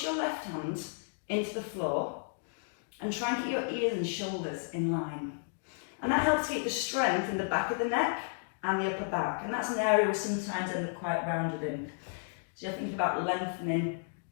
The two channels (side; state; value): right; silent; digital silence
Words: your left hand into the floor and try and get your ears and shoulders in line. And that helps keep the strength in the back of the neck and the upper back. And that's an area we sometimes end up quite rounded in. So you're thinking about lengthening